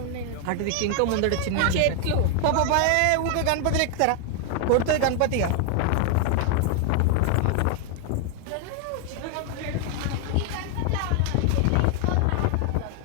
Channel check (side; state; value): both; different; correlation 0.00